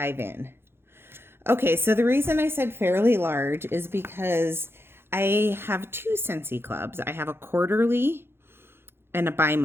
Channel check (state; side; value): late; left; 0.11 ms